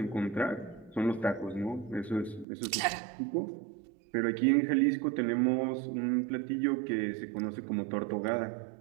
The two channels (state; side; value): drops out; left; at 2.5 s